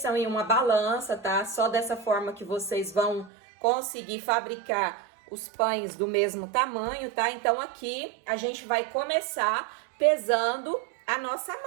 em uma balança, tá? Só dessa forma que vocês vão conseguir fabricar os pães do mesmo tamanho, tá? Então, aqui a gente vai começar pesando a nossa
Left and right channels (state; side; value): drops out; left; at 3.3 s